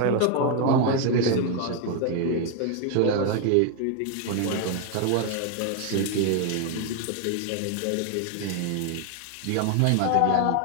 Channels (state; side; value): different; both; correlation 0.01